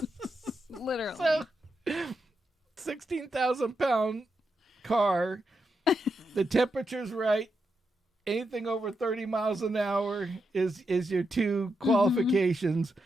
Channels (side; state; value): both; normal; correlation 0.85